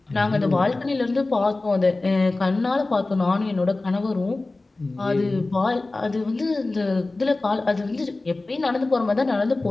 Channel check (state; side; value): quieter; right; 3.2 dB